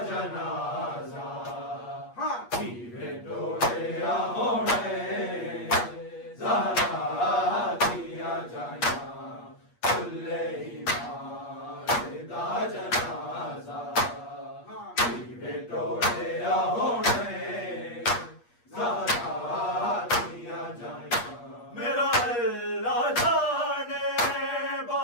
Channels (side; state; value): right; late; 8.4 ms